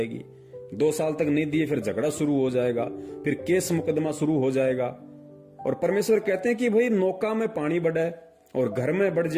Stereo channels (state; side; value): identical; both; correlation 1.00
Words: 2 साल तक नहीं दिए फिर झगड़ा शुरू हो जाएगा, फिर केस मुकदमा शुरू हो जाएगा। और परमेश्वर कहते हैं कि भाई नौका में पानी बढ़े और घर में बढ़